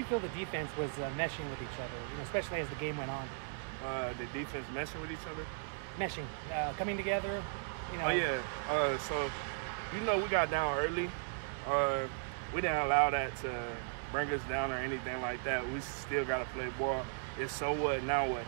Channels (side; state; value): left; silent; 53 dB below the other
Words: feel the defense was meshing with each other, especially as the game went on? The defense meshing with each other? Meshing, coming together. Oh yeah. So we got down early. We didn't allow that to bring us down or anything like that. We still got to play ball. It's so what, now what?